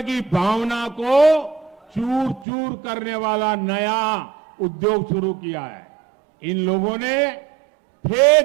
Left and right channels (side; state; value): left; drops out; at 2.5 s